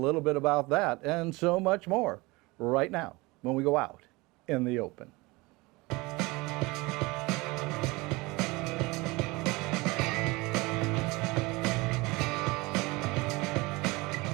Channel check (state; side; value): quieter; left; 23.6 dB